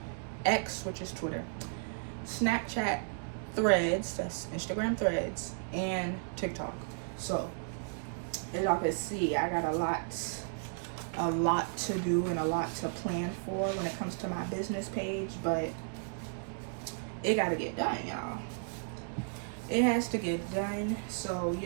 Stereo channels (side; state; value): left; silent; digital silence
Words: X, which is Twitter, Snapchat, Threads, that's Instagram Threads, and TikTok. So as y'all can see, I got a lot to do and a lot to plan for when it comes to my business page, but it gotta get done, y'all. It has to get done. So,